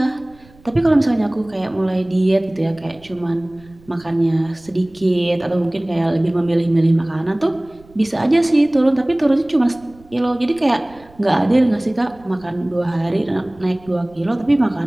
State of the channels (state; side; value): noise; right; rumble, 27 dB below the sound